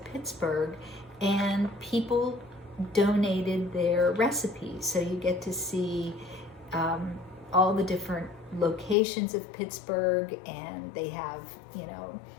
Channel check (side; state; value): right; drops out; at 9.0 s